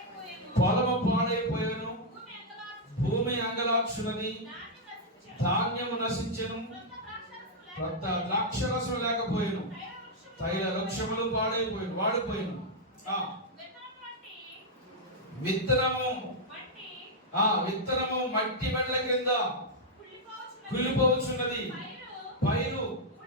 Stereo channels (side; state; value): both; normal; correlation -0.04